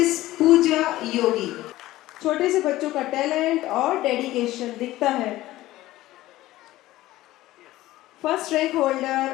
Pooja Yogi. छोटे से बच्चों का टैलेंट और डेडिकेशन दिखता है। First rank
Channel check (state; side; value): quieter; right; 16.3 dB